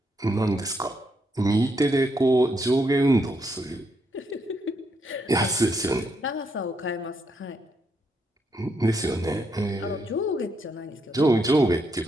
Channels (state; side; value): normal; both; correlation 0.78